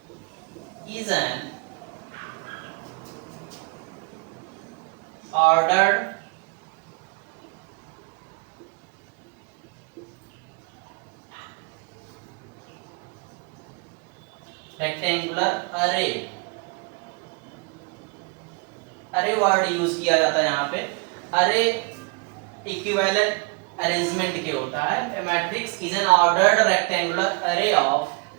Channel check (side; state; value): left; quieter; 31.2 dB